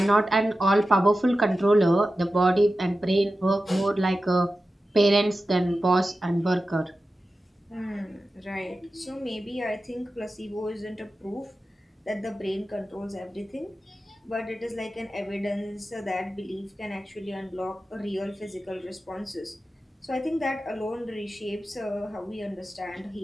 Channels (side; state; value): both; normal; correlation 0.93